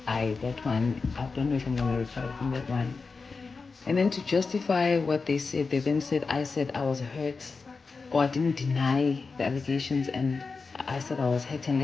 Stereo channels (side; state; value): right; quieter; 4.5 dB